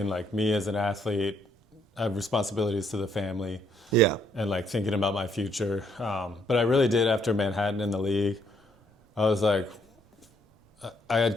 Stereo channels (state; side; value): normal; both; correlation 0.69